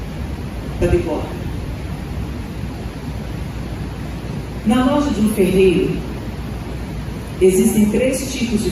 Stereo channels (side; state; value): both; identical; correlation 1.00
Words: da bigorna. Na loja de um ferreiro existem 3 tipos de